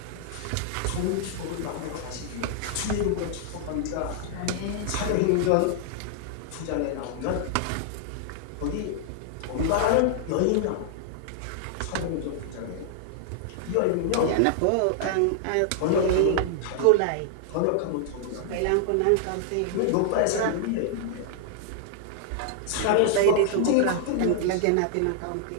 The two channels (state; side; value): different; both; correlation -0.01